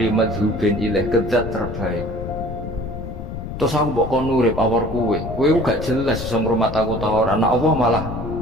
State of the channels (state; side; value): noise; left; rumble, 8 dB below the sound